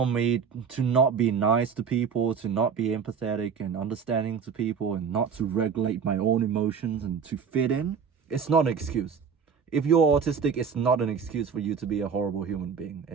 me to not be nice to people, to not be empathetic and understanding to people, and not to regulate my own emotions and to fit in. It's not an excuse. If you're autistic, it's not an excuse for you to be a horrible human being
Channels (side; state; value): left; quieter; 6.5 dB